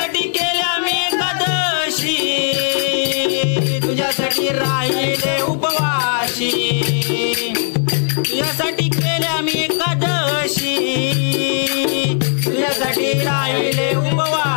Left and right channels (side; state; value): right; silent; 68 dB below the other